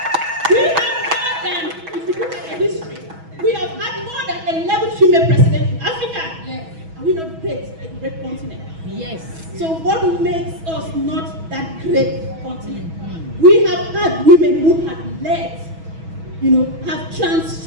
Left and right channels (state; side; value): late; left; 6.2 ms